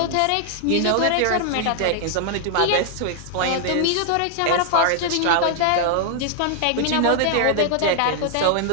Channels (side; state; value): both; different; correlation 0.00